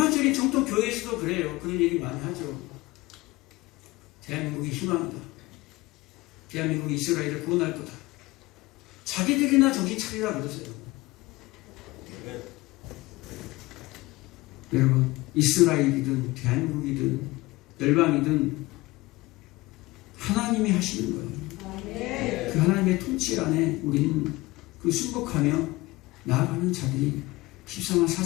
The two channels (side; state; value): right; quieter; 21.0 dB